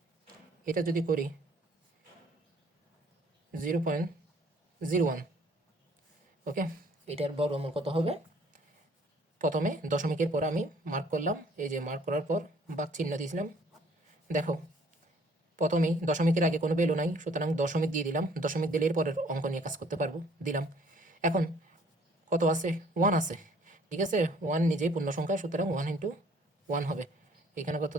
এটা যদি করি 0.01, ওকে, এটার বর্গমূল কত হবে। প্রথমে দশমিকের পর আমি মার্ক করলাম, এই যে মার্ক করার পর ভাগ চিহ্ন দিয়েছিলাম। দেখো, প্রথমেই দশমিকের আগে কোনো ভ্যালু নাই, সুতরাং দশমিক দিয়ে দিলাম। দশমিক দিলে এর পরের অঙ্ক নিয়ে কাজ করতে পারবো, দিলাম। এখন কত আছে, 1 আছে। ঠিক আছে, 1 নিজেই পূর্ণ সংখ্যা, সুতরাং 1 ইন্টু 1 হবে। এখানে কত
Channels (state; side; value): normal; both; correlation 0.59